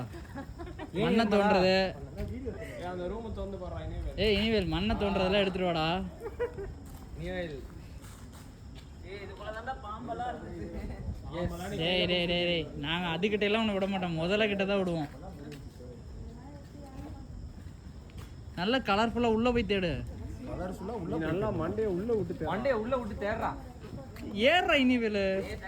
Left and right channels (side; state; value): both; identical; correlation 1.00